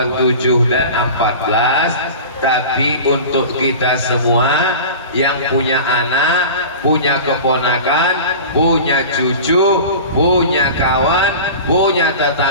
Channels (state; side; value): inverted; both; correlation -0.35